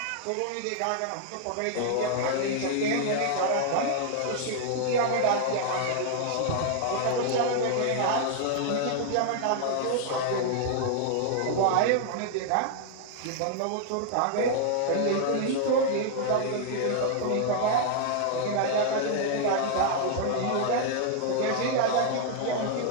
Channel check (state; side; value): different; both; correlation 0.00